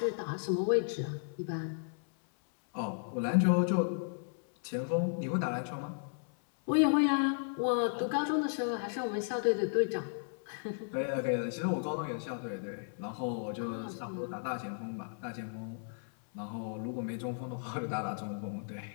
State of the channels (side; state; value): right; silent; 55 dB below the other